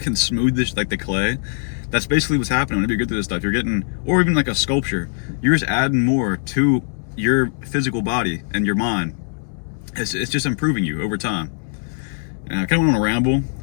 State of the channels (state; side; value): silent; right; digital silence